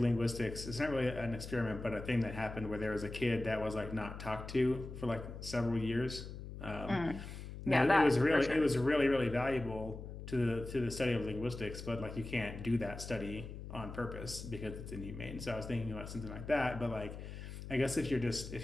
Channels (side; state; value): left; noise; hum, 10 dB below the sound